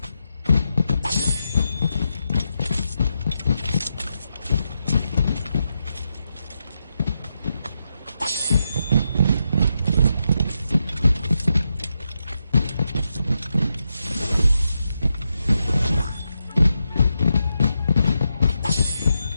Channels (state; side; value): inverted; both; correlation -0.85